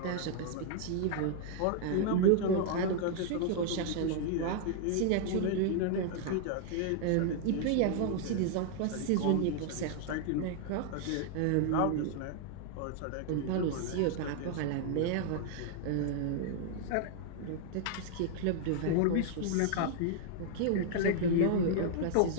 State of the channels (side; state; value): both; different; correlation 0.00